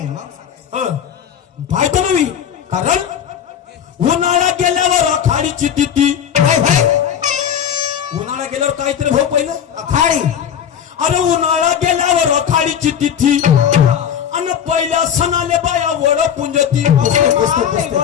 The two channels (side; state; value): right; quieter; 8.8 dB